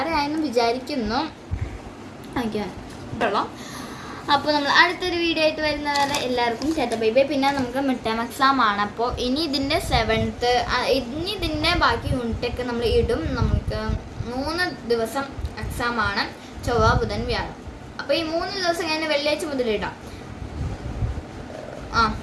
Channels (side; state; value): both; identical; correlation 1.00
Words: വിചാരിക്കുന്നു. അപ്പോൾ നമ്മൾ അടുത്തൊരു വീഡിയോ ആയിട്ട് വരുന്നവരെ എല്ലാവർക്കും ചേട്ടാ ബൈ ബൈ. പിന്നെ നമുക്ക് മിഡ് ടേം എക്സാം ആണ്. അപ്പോൾ ഇനി ഇതിൻ്റെ 7th, ഇനി ഇതിൻ്റെ ബാക്കി യൂണിറ്റൊക്കെ നമ്മൾ ഇടും. നമുക്ക് 3 ദിവസം എക്സാം ആണ്, ചൊവ്വ, ബുധൻ, വ്യാഴം. അപ്പോൾ ഈ 3 ദിവസം കഴിഞ്ഞ് വെള്ളിയാഴ്ച മുതൽ ഇടാം.